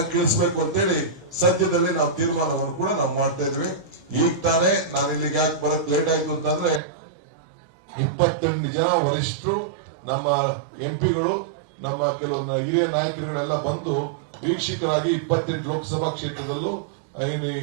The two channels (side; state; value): left; drops out; at 6.8 s